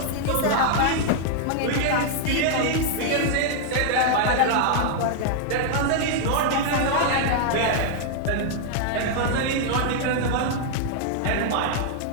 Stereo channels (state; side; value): different; both; correlation 0.00